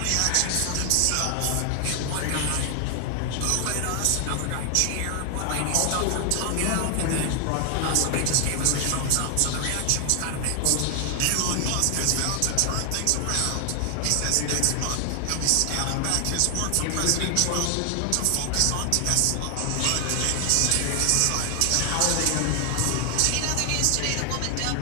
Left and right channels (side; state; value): both; different; correlation 0.00